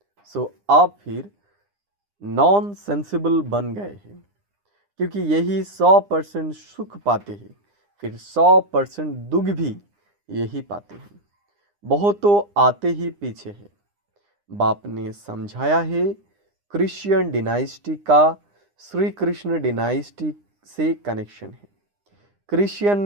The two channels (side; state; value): left; late; 9.8 ms